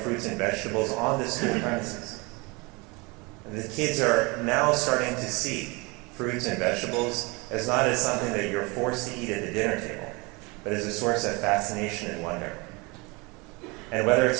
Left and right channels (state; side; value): quieter; left; 27.0 dB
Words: and vegetables on the school premises. And the kids are now starting to see fruits and vegetables as not as something that you're forced to eat at the dinner table, but as a source of fascination and wonder. And whether